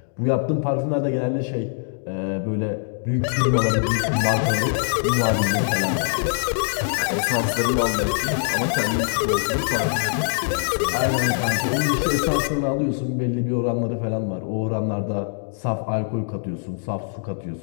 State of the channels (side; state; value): right; silent; digital silence